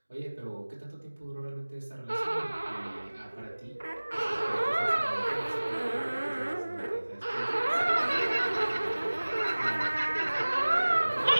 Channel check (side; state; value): both; inverted; correlation -1.00